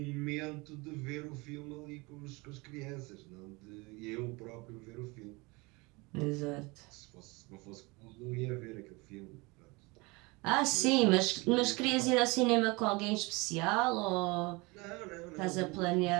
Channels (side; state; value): left; quieter; 25.6 dB